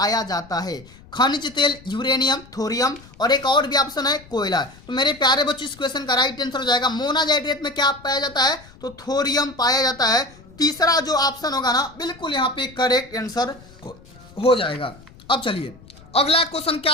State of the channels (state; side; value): noise; left; rumble, 23 dB below the sound